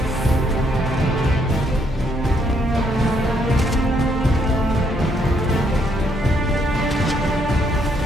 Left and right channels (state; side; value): normal; both; correlation 0.72